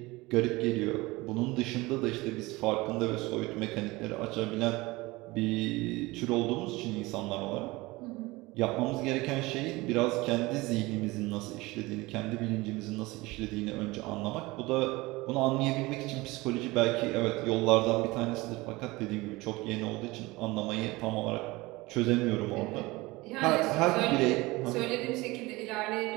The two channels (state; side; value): quieter; left; 21.6 dB